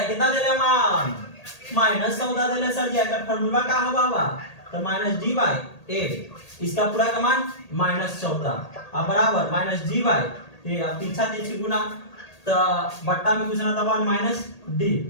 कितना दे रहे मान -14 दे रहे सर जी, अगर फार्मूला का होगा तो माइनस डी बाई ए, इसका पूरा का मान -14 अब बराबर माइनस डी बाई ए। अब पीछा तिरछी गुना तो बट्टा में कुछ ना तो 1 माइनस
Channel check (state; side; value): late; right; 1.8 ms